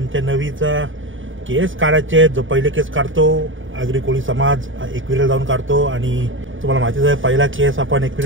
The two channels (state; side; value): late; left; 0.57 ms